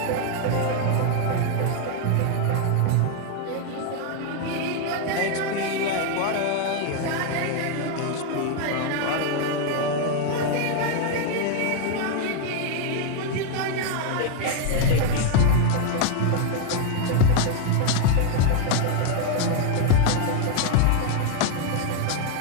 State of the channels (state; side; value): different; both; correlation 0.00